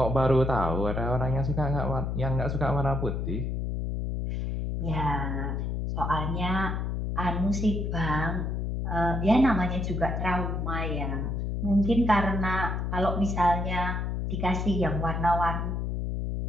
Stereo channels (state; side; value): noise; left; hum, 1 dB below the sound